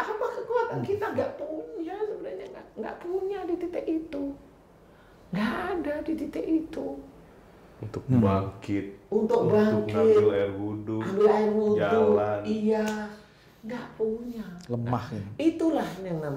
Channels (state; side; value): identical; both; correlation 1.00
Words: kekuatan kita nggak punya sebenarnya, nggak punya di titik itu, nggak ada di titik itu. Untuk bangkit, untuk ngambil air wudhu, jalan, iya, nggak punya. Lemah Nah, itulah yang